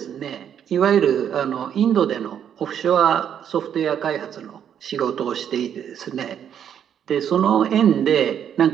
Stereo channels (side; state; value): left; quieter; 8.9 dB